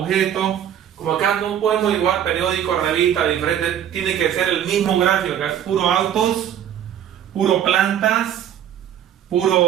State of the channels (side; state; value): left; quieter; 10.0 dB